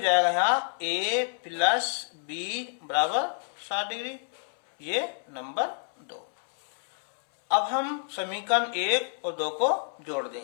यहाँ ए प्लस बी बराबर 60 डिग्री, ये नंबर 2। अब हम समीकरण 1 और 2 को जोड़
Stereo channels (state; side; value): silent; right; 59 dB below the other